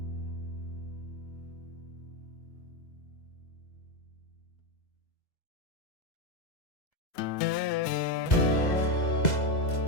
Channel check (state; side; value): late; right; 2.0 ms